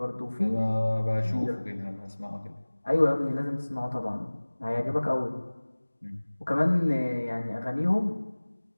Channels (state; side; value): inverted; both; correlation -1.00